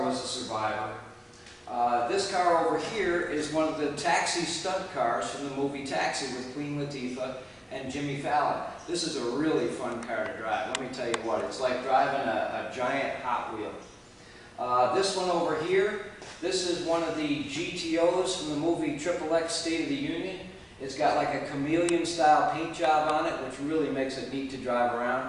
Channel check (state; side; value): identical; both; correlation 1.00